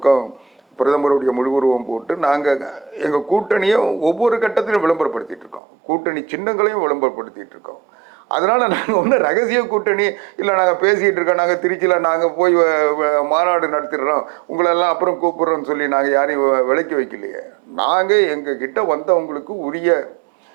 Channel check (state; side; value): drops out; left; at 5.6 s